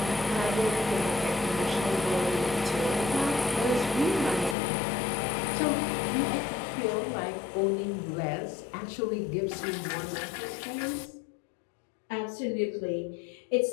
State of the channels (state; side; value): drops out; right; at 4.5 s